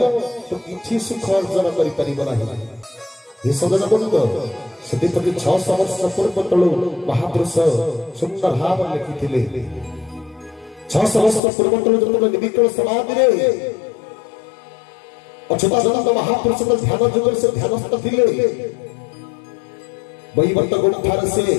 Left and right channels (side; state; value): right; drops out; at 11.4 s